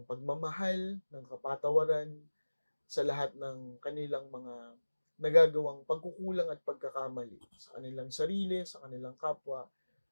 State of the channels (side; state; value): both; inverted; correlation -1.00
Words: pagmamahal, ng kapatawaran sa lahat ng kanilang mga nagagawang pagkukulang at pagkakamali sa kanilang sarili, sa kanilang kapwa,